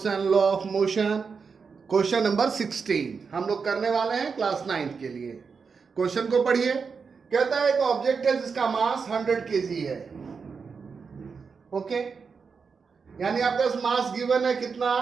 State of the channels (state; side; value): quieter; left; 5.4 dB